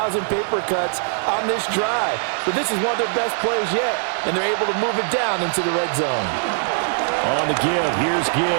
paper cuts on this drive. But this is one of their best plays yet, and they're able to move it down into the red zone. On the give, here's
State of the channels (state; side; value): silent; left; 65 dB below the other